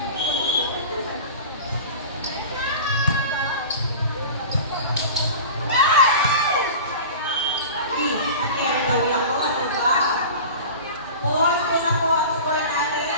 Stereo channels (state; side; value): inverted; both; correlation -0.35